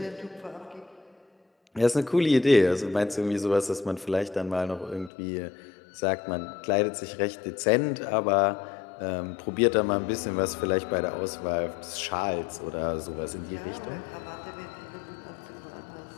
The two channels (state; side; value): drops out; right; at 5.1 s